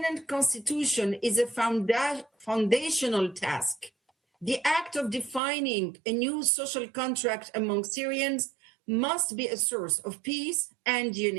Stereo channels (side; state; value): left; drops out; at 5.4 s